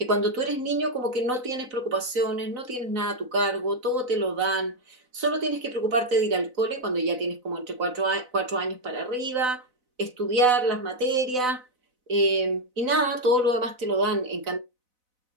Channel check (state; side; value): late; left; 4.0 ms